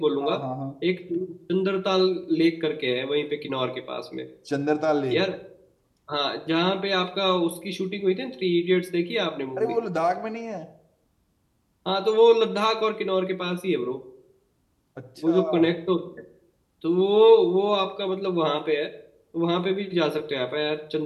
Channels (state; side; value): identical; both; correlation 1.00